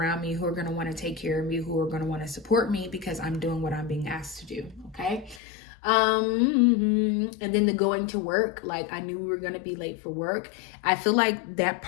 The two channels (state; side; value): drops out; right; at 5.4 s